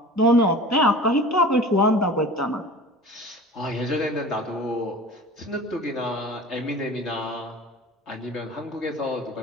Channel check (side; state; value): both; normal; correlation 0.39